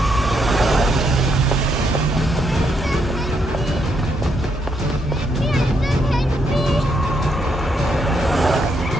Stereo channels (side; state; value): both; normal; correlation 0.76